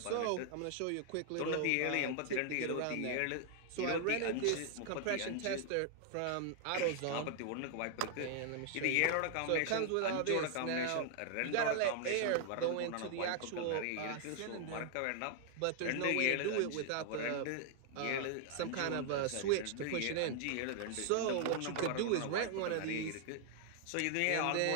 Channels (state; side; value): different; both; correlation 0.00